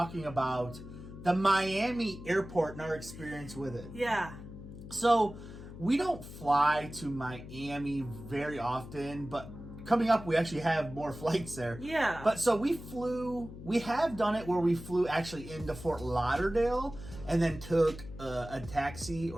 about the Miami airport and our experience with it. Yeah. So, we don't fly to Miami very often, but coming up we actually have more flights there. Yeah. But so we have done it where we flew actually into Fort Lauderdale and then took a taxi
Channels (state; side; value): noise; left; hum, 13 dB below the sound